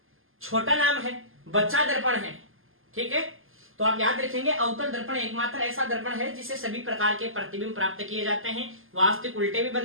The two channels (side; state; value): left; late; 0.59 ms